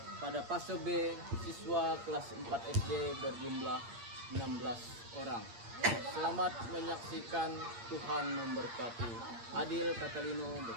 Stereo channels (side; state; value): left; late; 8.7 ms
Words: pada fase B siswa kelas 4 SD berjumlah 16 orang. Selamat menyaksikan, Tuhan memberkati. Adil Katalino,